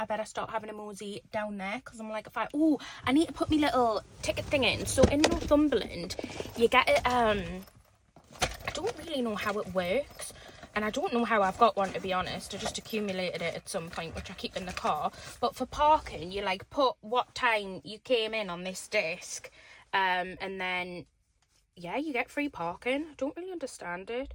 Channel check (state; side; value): identical; both; correlation 1.00